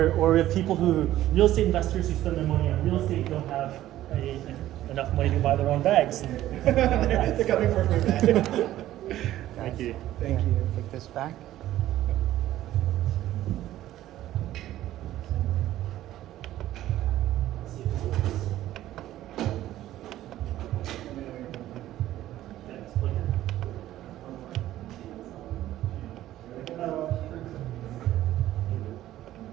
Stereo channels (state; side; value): quieter; left; 13.9 dB